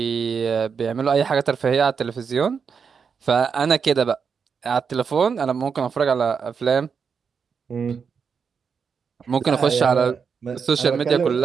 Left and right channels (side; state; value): left; quieter; 6.1 dB